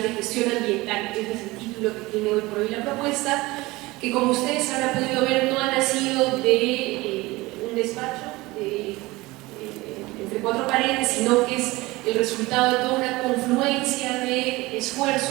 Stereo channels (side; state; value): left; quieter; 21.0 dB